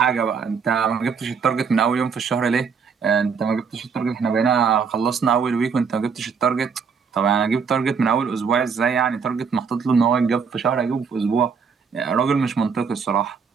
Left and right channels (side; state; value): left; quieter; 6.0 dB